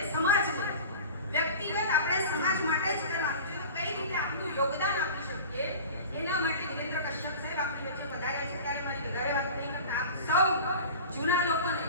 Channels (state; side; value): inverted; both; correlation -0.37